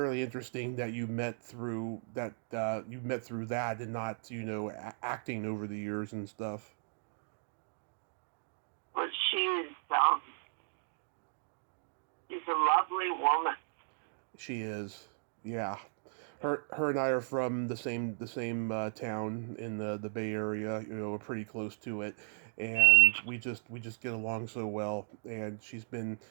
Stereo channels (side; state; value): left; silent; digital silence